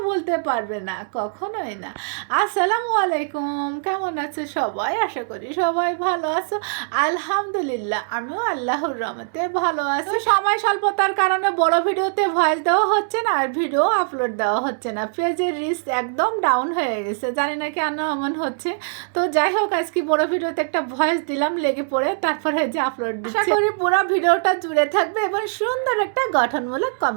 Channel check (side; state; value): left; silent; digital silence